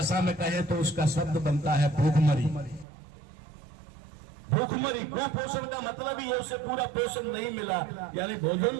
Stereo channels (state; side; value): drops out; left; at 2.9 s